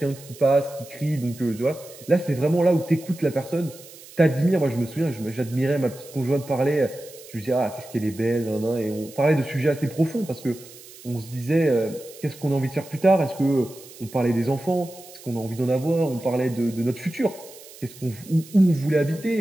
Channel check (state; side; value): noise; right; hiss, 19 dB below the sound